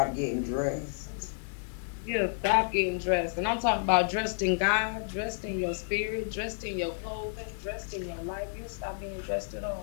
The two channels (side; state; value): right; silent; digital silence